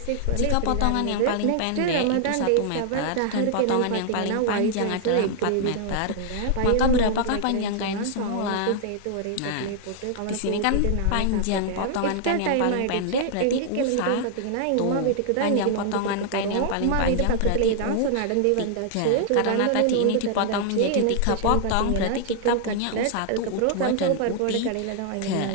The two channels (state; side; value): different; both; correlation 0.00